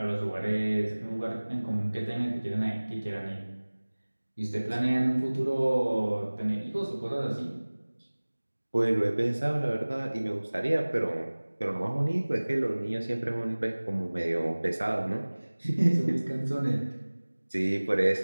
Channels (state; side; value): inverted; both; correlation -1.00